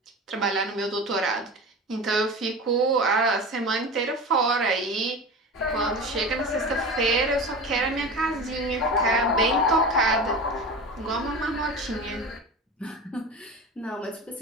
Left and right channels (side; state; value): both; normal; correlation 0.30